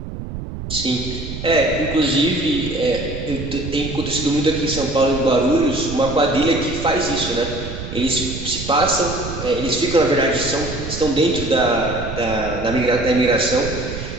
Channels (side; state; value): right; noise; rumble, 8 dB below the sound